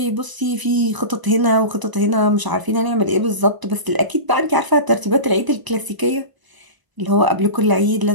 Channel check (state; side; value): late; left; 1.0 ms